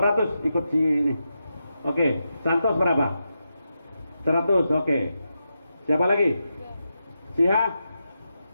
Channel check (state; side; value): inverted; both; correlation -0.87